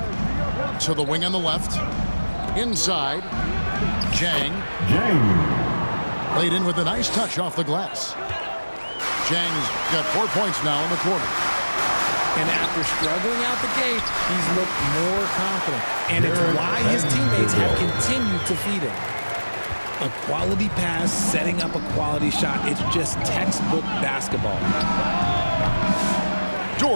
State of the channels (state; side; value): inverted; both; correlation -1.00